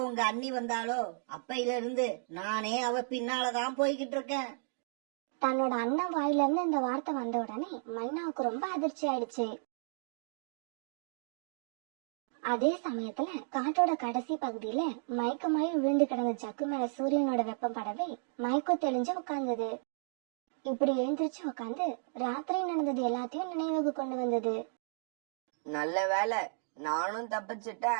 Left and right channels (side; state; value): left; silent; digital silence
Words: உங்க அண்ணி வந்தாலோ அப்பையில இருந்து நானே அவ பின்னாலதான் போய்கிட்டு இருக்கேன். தன்னோட அண்ணன் வாயில இருந்து இந்த வார்த்தை வந்த உடனே மைனாவுக்கு ரொம்ப அதிர்ச்சி ஆயிடுச்சு. அதே சமயத்துல காட்டோட கடைசி பகுதியில மயக்கமாயி விழுந்து கிடந்த ஜக்கு மேல சூரியனோட வெப்பம் படவே மயக்கம் தெளிஞ்சு உட்கார்ந்தது. இப்படி எழுந்திருச்சு உட்காந்து ராத்திரி நடந்தது எல்லாத்தையும் நினைவுக்கு கொண்டு வந்தது. நல்ல வேலை, நானும்